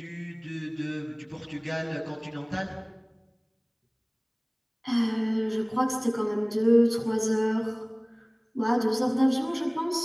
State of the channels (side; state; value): both; identical; correlation 1.00